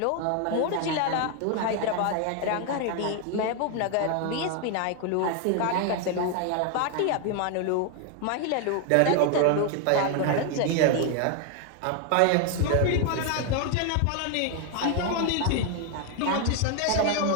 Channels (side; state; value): both; different; correlation 0.01